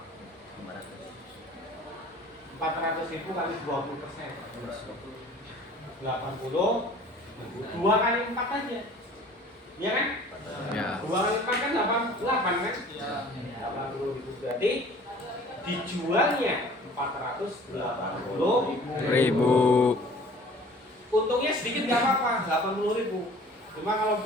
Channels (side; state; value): both; normal; correlation 0.48